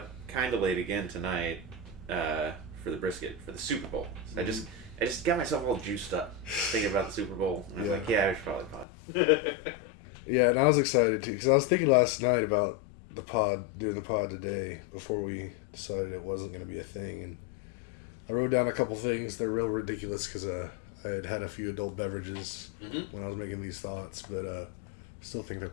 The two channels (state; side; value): drops out; right; at 8.8 s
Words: kind of late again tonight for the brisket for the Super Bowl. So I just got myself all juiced up thinking about the Super Bowl. And I was like, yeah, I should probably pod. Yeah, and I was excited too because I was thinking last night about doing the pod today before we decided it wasn't going to be a thing, and I wrote down a couple things. They're real ridiculous because I had a few adult beverages when I was making these thoughts, but I still think they're